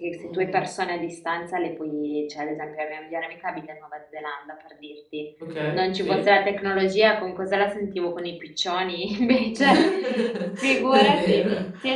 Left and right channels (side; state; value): both; identical; correlation 1.00